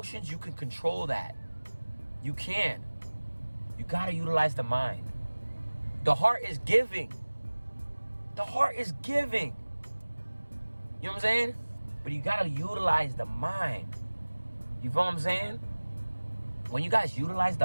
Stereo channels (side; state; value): both; inverted; correlation -1.00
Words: you can control that. You can. You got to utilize the mind. The heart is giving. The heart is giving. You know what I'm saying? But you got to utilize the mind. You feel what I'm saying? When you guys utilize